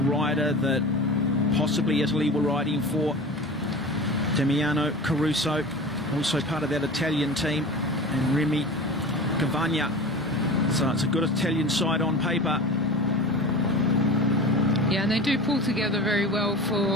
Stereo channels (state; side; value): normal; both; correlation 0.34